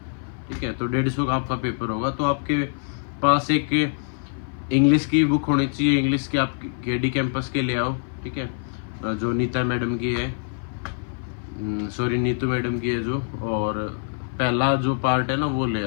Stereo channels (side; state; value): right; silent; 56 dB below the other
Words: ठीक है। तो 150 का आपका पेपर होगा, तो आपके पास एक इंग्लिश की बुक होनी चाहिए, इंग्लिश की आप KD कैंपस के ले आओ, ठीक है, जो नीता मैडम की है, सॉरी नीतू मैडम की है जो, और पहला जो पार्ट है ना वो ले